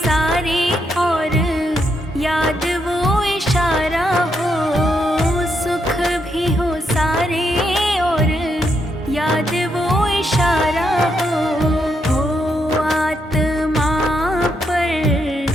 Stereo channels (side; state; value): both; normal; correlation 0.79